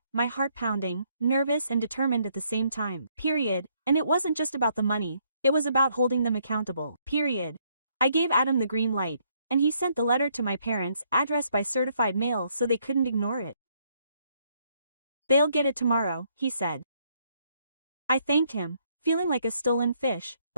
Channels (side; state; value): both; inverted; correlation -0.70